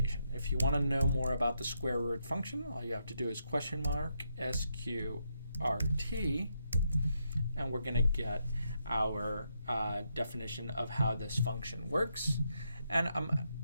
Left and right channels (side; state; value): both; inverted; correlation -0.80